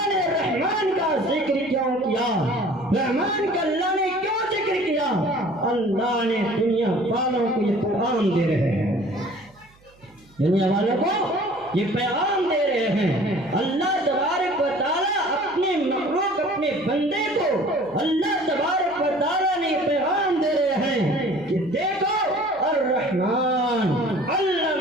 نے رحمان کا ذکر کیوں کیا؟ رحمان کا اللہ نے کیوں ذکر کیا؟ اللہ نے دنیا والوں کو یہ پیغام دے رہے ہیں، دنیا والوں کو یہ پیغام دے رہے ہیں۔ اللہ تبارک و تعالیٰ اپنے مخلوق، اپنے بندے کو اللہ تبارک و تعالیٰ نے پیغام دے رہے ہیں کہ دیکھو الرحمن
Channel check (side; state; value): right; noise; hum, 30 dB below the sound